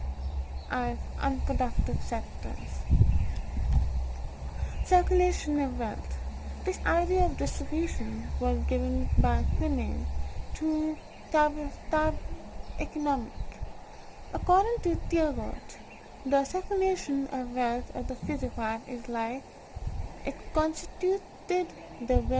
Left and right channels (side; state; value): both; identical; correlation 1.00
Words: as unproductive sectors. Circulation of wealth. This idea of distribution was given by Quinney to Tab economic. According to Thiebaud, the circulation of wealth of the physical life is like it constituted the